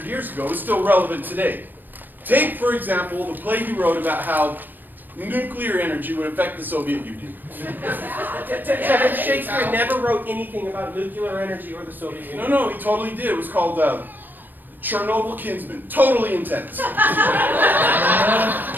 years ago is still relevant today. Take, for example, the play he wrote about how nuclear energy would affect the Soviet Union. Devin, Shakespeare never wrote anything about nuclear energy or the Soviet Union. No, he totally did. It was called Chernobyl Kinsman. Totally intense.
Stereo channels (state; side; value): late; left; 0.091 ms